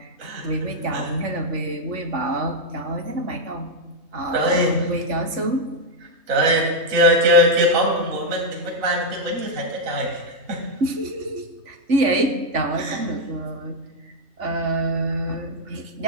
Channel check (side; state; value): left; late; 3.5 ms